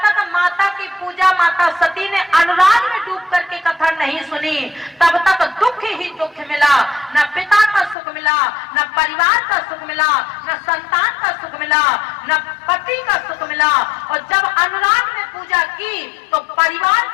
तक माता की पूजा माता सती ने अनुराग में डूब करके कथा नहीं सुनी तब तक दुख ही दुख मिला। न पिता का सुख मिला, न परिवार का सुख मिला, न संतान का सुख मिला, न पति का सुख मिला। और जब अनुराग में पूजा की तो परिवार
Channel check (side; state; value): right; drops out; at 8.0 s